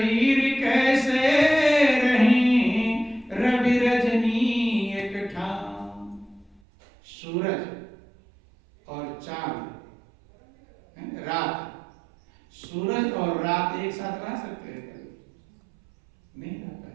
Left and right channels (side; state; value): left; drops out; at 6.6 s